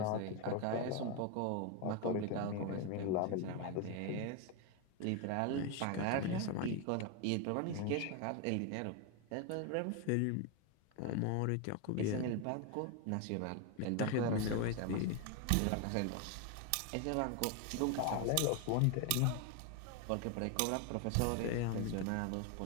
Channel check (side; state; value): both; different; correlation 0.01